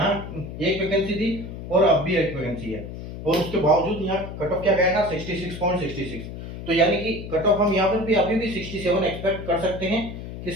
एक वैकेंसी थी और अब भी एक वैकेंसी है, और उसके बावजूद यहाँ कट ऑफ क्या गया था 66.66। तो यानी कि कट ऑफ हम यहाँ पर भी अभी भी 67 एक्सपेक्ट कर सकते हैं कि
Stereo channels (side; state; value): left; noise; hum, 10 dB below the sound